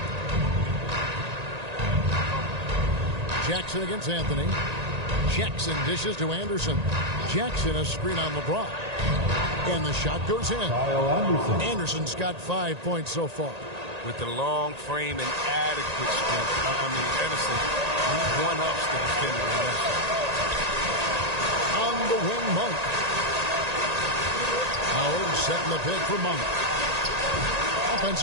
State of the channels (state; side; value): late; left; 1.9 ms